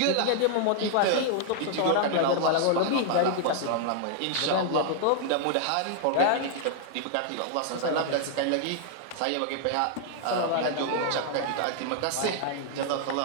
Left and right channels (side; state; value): both; different; correlation -0.01